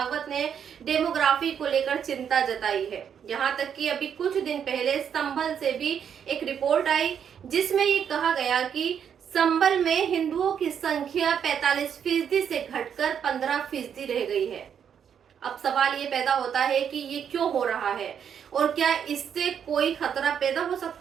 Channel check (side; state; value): left; quieter; 8.1 dB